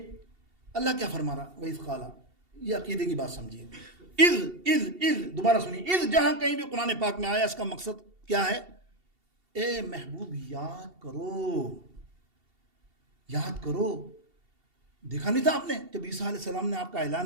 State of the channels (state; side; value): late; left; 2.7 ms